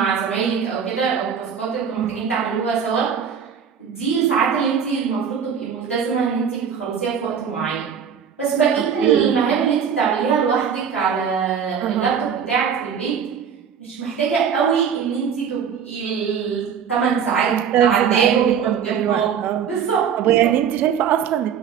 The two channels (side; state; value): left; quieter; 7.5 dB